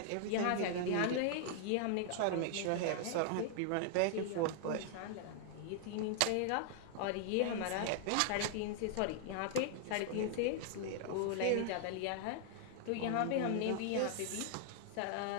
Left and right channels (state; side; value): different; both; correlation -0.01